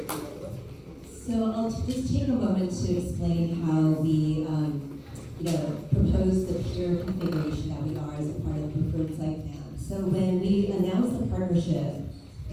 So I'll just take a moment to explain how we, propose the pier configuration that we are as a part of the preferred site plan. So when we announced the partnership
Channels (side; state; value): both; identical; correlation 1.00